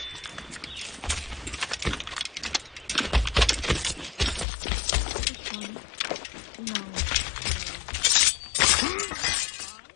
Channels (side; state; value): right; drops out; at 4.5 s